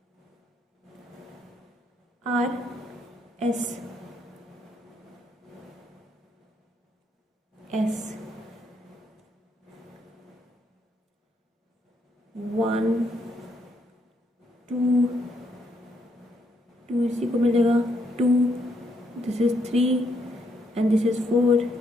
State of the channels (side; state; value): both; normal; correlation 0.75